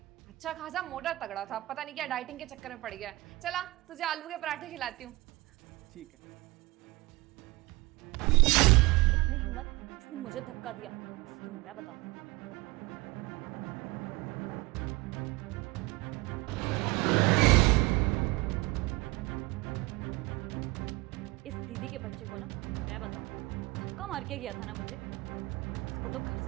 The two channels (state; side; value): quieter; left; 21.1 dB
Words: अच्छा खासा मोटा तगड़ा था, पता नहीं क्या डाइटिंग के चक्कर में पड़ गया है। चला तुझे आलू के पराठे खिलाती हूँ। ठीक है। इतनी हिम्मत, इसने मुझे धक्का दिया, तो मैं बताती हूँ। इस दीदी के बच्चे को ना मैं बताऊँ, धक्का मार के गया था ना मुझे, इसको तो घर